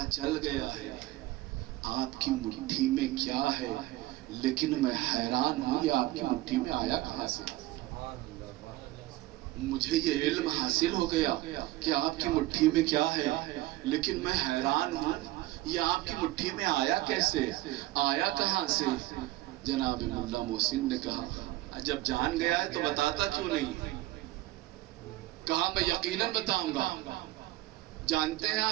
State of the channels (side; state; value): left; quieter; 17.6 dB